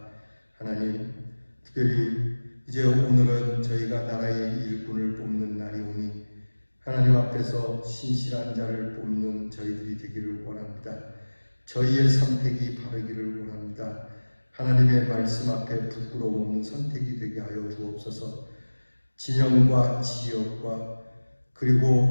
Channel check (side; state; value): both; inverted; correlation -1.00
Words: 하나님, 특별히 이제 오늘은 저희가 나라의 일꾼을 뽑는 날이오니 하나님 앞에서 신실한 자를 뽑는 저희들이 되기를 원합니다. 저희의 선택이 바르기를 원합니다. 하나님의 말씀 앞에 부끄러움 없는 선택이 되게 하여 주옵소서. 진영과 지역과